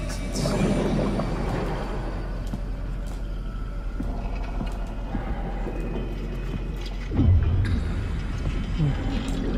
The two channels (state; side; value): identical; both; correlation 1.00